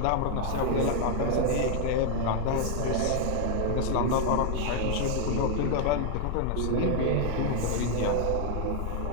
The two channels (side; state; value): both; different; correlation 0.00